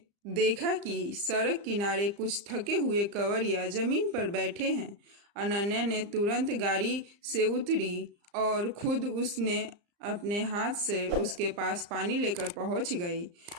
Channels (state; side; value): late; left; 34 ms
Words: देखा कि सड़क किनारे कुछ थके हुए कंवरिया जमीन पर बैठे हैं। अनन्या ने तुरंत गाड़ी से उतरी और खुद उसने अपने हाथ से उसके पास पानी लेकर पहुंच गई।